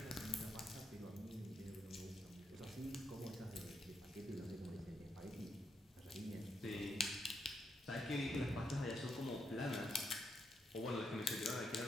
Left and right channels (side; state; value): both; normal; correlation 0.80